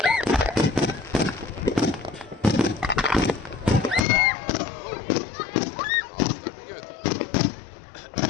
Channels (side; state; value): right; drops out; at 4.0 s